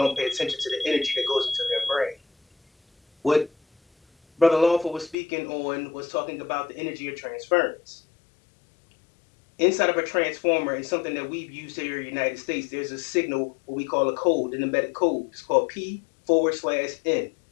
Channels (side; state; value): right; drops out; at 5.2 s